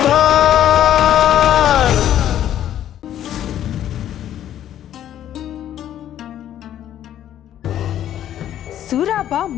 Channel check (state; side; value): quieter; right; 11.3 dB